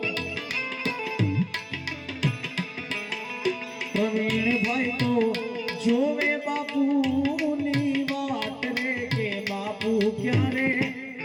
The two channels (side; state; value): both; identical; correlation 1.00